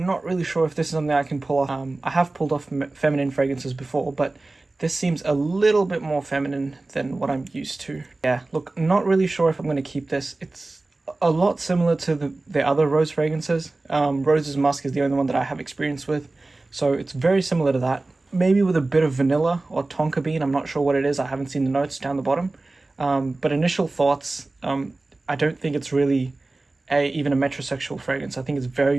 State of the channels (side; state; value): left; quieter; 3.1 dB